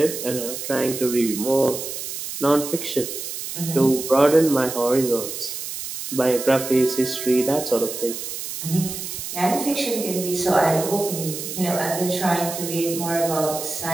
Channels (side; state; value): right; noise; hiss, 7 dB below the sound